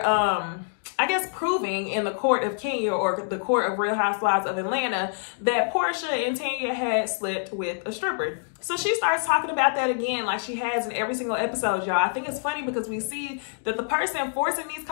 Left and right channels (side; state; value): right; silent; digital silence